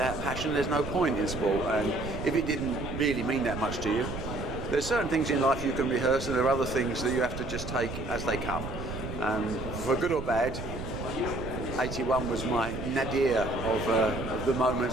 passion there's no point in sport, and if it didn't really mean that much to you, there's certain things in life you can rehearse, and there are other things that you have to just take as they come. And for good or bad, 81 was my nadir of the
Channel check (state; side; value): noise; right; rumble, 7 dB below the sound